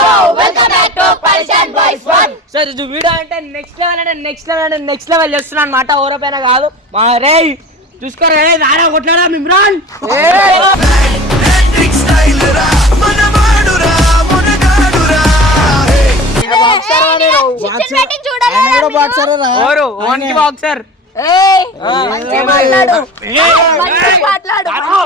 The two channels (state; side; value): normal; both; correlation 0.38